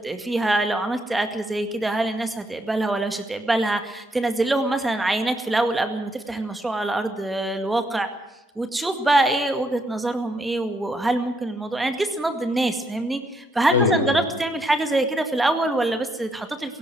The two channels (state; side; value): normal; both; correlation 0.75